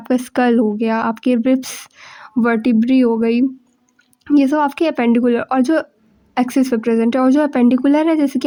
स्कल हो गया, आपके रिब्स, वर्टिब्री हो गई, ये सब आपके एपेंडिकुलर और जो एक्सिस पे प्रेजेंट है। और जो एपेंडिकुलर है, जैसे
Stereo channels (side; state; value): both; identical; correlation 1.00